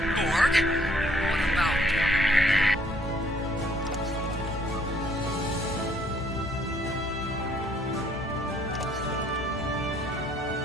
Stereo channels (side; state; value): both; normal; correlation 0.64